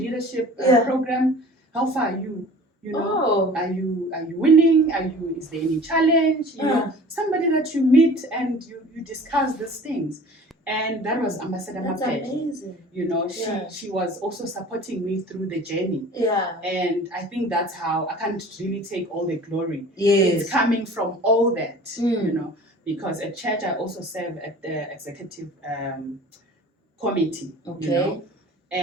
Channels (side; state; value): both; normal; correlation 0.44